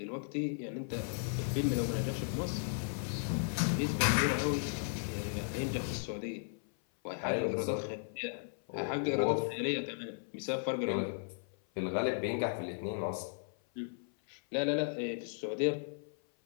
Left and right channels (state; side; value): silent; right; 54 dB below the other